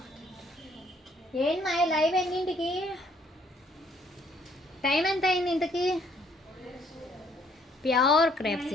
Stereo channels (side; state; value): both; normal; correlation 0.65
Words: ఏంటి మా లైవ్ ఎన్నింటికి? టైం ఎంత అయింది ఇంతకి? Pure crepe